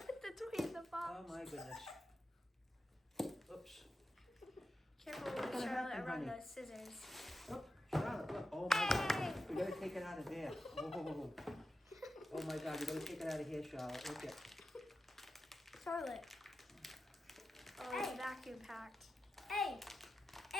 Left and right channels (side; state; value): both; normal; correlation 0.91